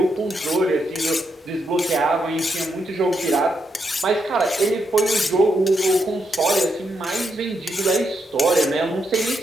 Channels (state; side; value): normal; both; correlation 0.81